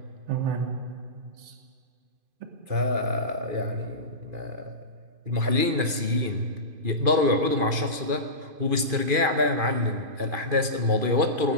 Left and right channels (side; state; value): left; late; 2.5 ms